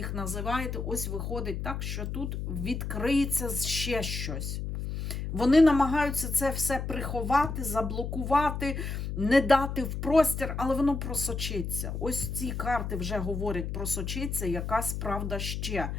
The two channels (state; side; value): noise; left; hum, 4 dB below the sound